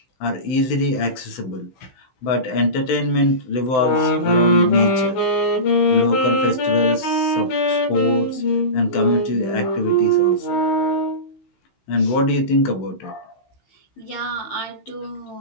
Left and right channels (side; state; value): right; late; 16 ms